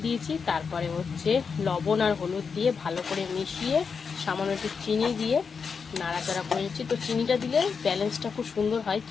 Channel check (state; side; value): quieter; right; 5.7 dB